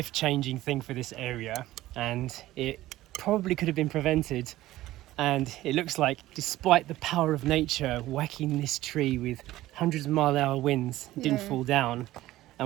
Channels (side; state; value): left; quieter; 15.9 dB